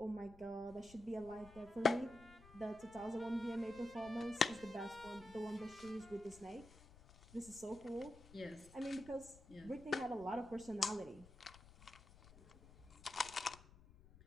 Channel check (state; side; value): noise; left; rumble, 20 dB below the sound